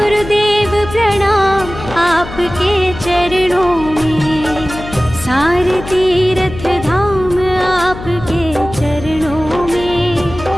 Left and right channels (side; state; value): left; noise; hum, 12 dB below the sound